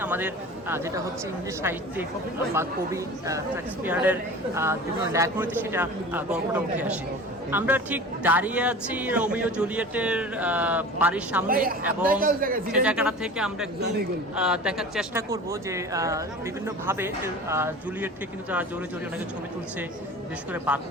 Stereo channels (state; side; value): normal; both; correlation 0.38